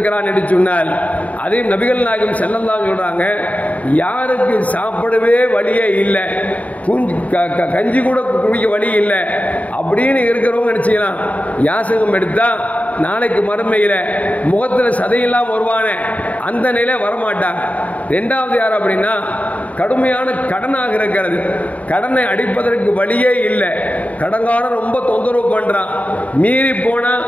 என்று சொன்னால், அதையும் நபிகள் நாயகம் ஸல்லல்லாஹு அலைஹி சொல்றாங்க, யாருக்கு சாப்பிடவே வழியே இல்லை, கஞ்சி கூட குடிக்க வழி இல்லை அப்படின்னு இருக்கிறவங்க நினைச்சுக்கலாம், யாசகம் எடுத்தா நாளைக்கு மறுமையில முகத்தில் சதையெல்லாம் வருவானே அந்த நிலை வரமாட்டாங்க. 2வது யார் அப்படின்னா, கடுமையான கடனாக இருக்கிறது, கடனை அடிப்பதற்கு வழியே இல்லை, கடன்காரன் ரொம்ப தொந்தரவு பண்றான், மீறி போனா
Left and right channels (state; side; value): late; right; 0.070 ms